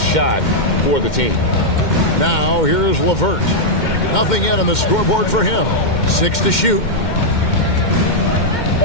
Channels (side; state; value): right; late; 2.1 ms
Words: shot for the team. Now here's LeVert. Nothing yet on the scoreboard for him. 6 to shoot.